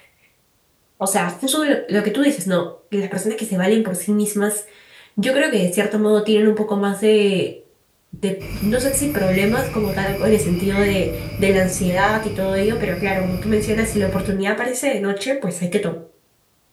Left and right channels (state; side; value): identical; both; correlation 1.00